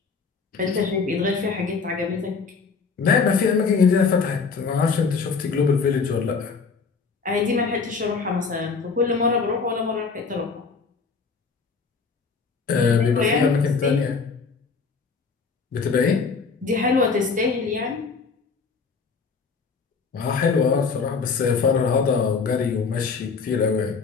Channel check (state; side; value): quieter; right; 5.0 dB